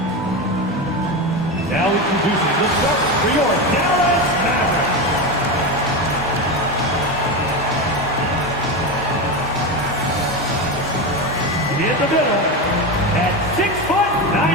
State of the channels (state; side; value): normal; both; correlation 0.17